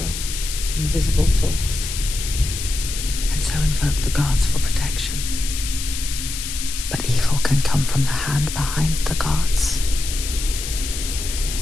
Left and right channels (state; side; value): noise; left; hiss, 6 dB below the sound